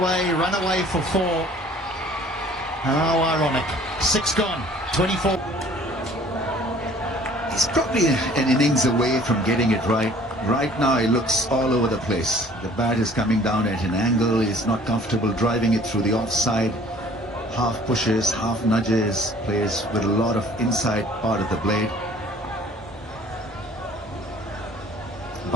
run away for 4. How ironic. 6 gone, 24. He's probably an innings away from getting it right. Right now, he looks all over the place. The bat is coming down at an angle. He's not comfortable driving it through the offside. Half pushes, half nudges, plays with a lot of inside part of the blade.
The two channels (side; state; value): both; normal; correlation 0.53